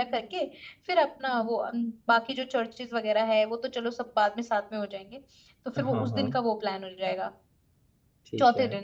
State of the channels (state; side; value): identical; both; correlation 1.00